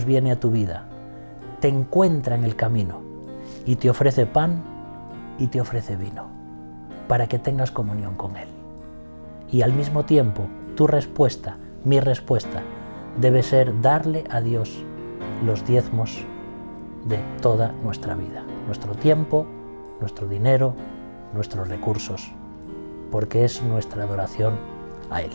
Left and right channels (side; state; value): both; inverted; correlation -1.00